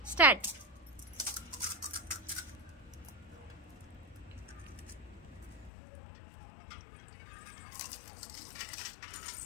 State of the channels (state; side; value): drops out; right; at 5.7 s